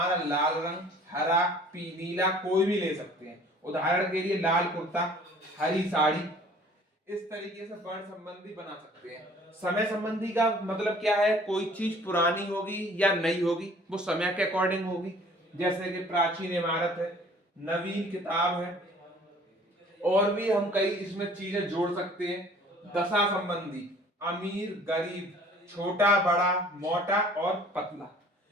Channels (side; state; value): both; normal; correlation 0.52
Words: लाल रंग, हरा, नीला कोई भी ले सकते हैं। उदाहरण के लिए लाल कुर्ता, हरी साड़ी, इस तरीके से वर्ण संबंधी बना सकते हैं। समय संबंधी का मतलब क्या है? कोई चीज पुरानी होगी या नई होगी, वो समय के अकॉर्डिंग होगी। जैसे कि प्राचीन इमारत है, नवीन किताब है, और भी हम कई इसमें चीजें जोड़ सकते हैं। दशा संबंधी, अमीर गरीब, छोटा बड़ा, मोटा और पतला।